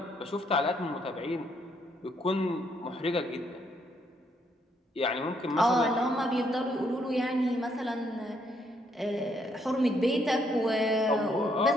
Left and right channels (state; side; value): normal; both; correlation 0.72